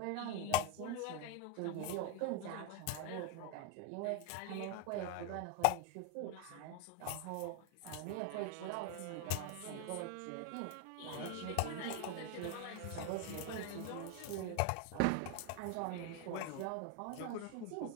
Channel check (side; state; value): both; different; correlation 0.01